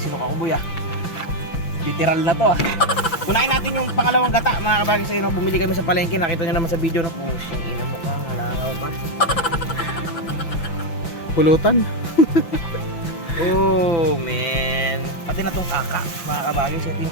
ako buya. Literal na to ah. Unahin natin yung pangalawang gata mga kabagis. Ayun, bumili kami sa palengke. Nakita nyo naman sa video na pusong ina mo ka. Halangaw pa. Pulutan. Oh man. Pati na tong kaka mga kabagis. Ito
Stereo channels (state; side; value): late; right; 5.9 ms